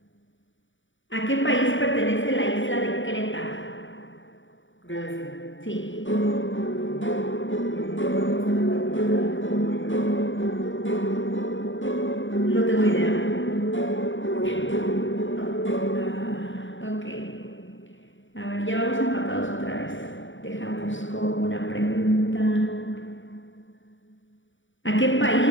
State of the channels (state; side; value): late; right; 0.56 ms